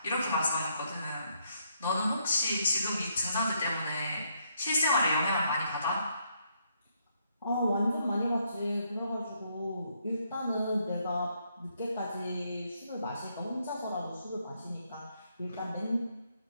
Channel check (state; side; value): inverted; both; correlation -0.74